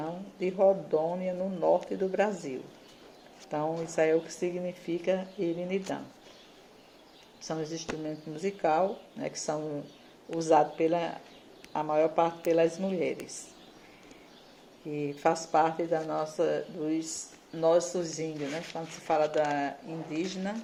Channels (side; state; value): both; identical; correlation 1.00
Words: de Rondônia, no norte do Brasil. Então, isso aí é o que significa irinidã. São os instrumentos musicais, né, que são usados a maior parte pelas mulheres, que faz parte dos nossos índios, né? Quando se fala da